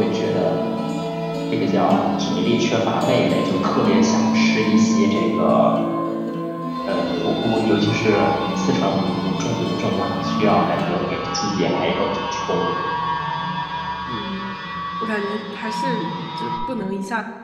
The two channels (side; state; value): both; identical; correlation 1.00